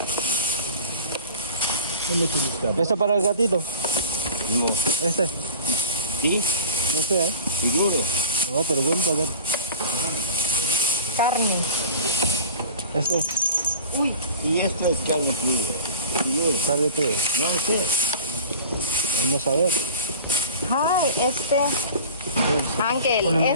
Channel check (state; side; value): inverted; both; correlation -0.40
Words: Esta para el gatito. no, Este. sí, No sé, seguro. No, pero bueno, para ver. Karne. Este. Uy, Y esto es carne cruda, seguro. Sale todo. No sé. Vamos a ver. hi, Uncle, Ponle bien,